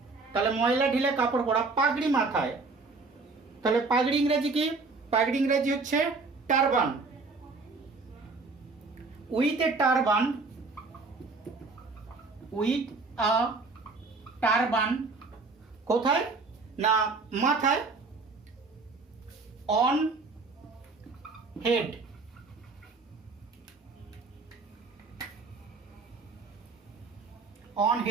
তাহলে ময়লা ঢিলে কাপড় পরা, পাগড়ি মাথায়। তাহলে পাগড়ি ইংরেজি কি? পাগড়ি ইংরেজি হচ্ছে turban. With a turban, with a turban, কোথায় না মাথায়, অন হেড, অন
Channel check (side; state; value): left; quieter; 3.9 dB